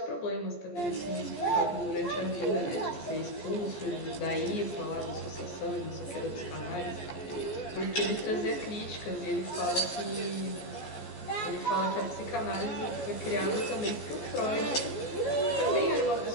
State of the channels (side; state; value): right; late; 14 ms